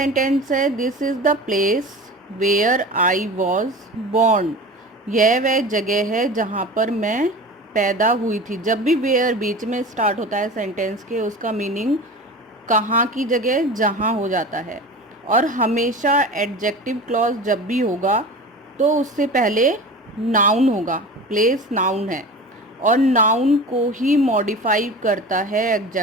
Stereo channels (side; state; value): both; normal; correlation 0.34